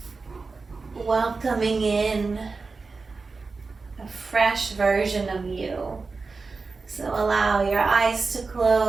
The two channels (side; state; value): left; quieter; 4.2 dB